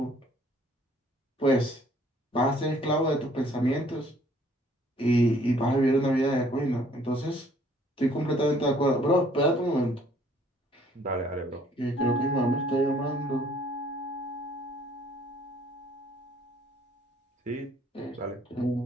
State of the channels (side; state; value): both; normal; correlation 0.60